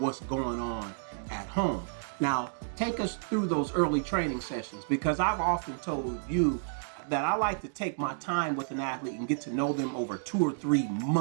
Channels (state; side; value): silent; left; digital silence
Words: what's going on at home. Now, take us through those early training sessions, because I've often told you that I like to take my time with an athlete and get to know them over 2 or 3